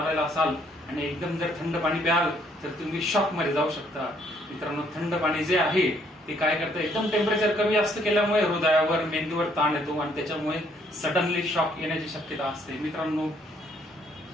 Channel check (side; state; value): both; normal; correlation 0.67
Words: असाल आणि एकदम जर थंड पाणी प्याल तर तुम्ही शॉक मध्ये जाऊ शकता. मित्रांनो, थंड पाणी जे आहे ते काय करतं, एकदम टेम्परेचर कमी जास्त केल्यामुळे हृदयावर मेंदूवर ताण येतो आणि त्याच्यामुळे सडनली शॉक येण्याची शक्यता असते. मित्रांनो,